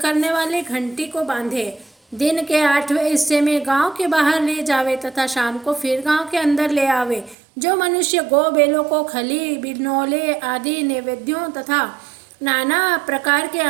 वाली घंटी को बांधे, दिन के 8वें हिस्से में गांव के बाहर ले जावे तथा शाम को फिर गांव के अंदर ले आवे। जो मनुष्य गो बैलों को खली, बिनोले आदि नैवेद्यों तथा नाना प्रकार के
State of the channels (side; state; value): left; drops out; at 7.4 s